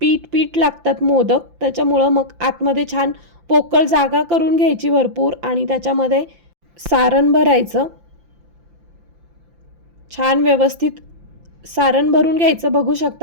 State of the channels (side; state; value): left; late; 5.8 ms